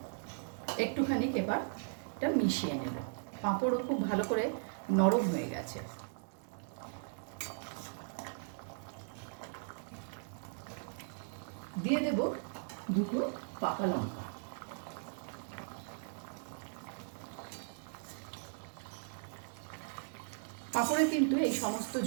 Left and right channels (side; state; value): left; silent; 53 dB below the other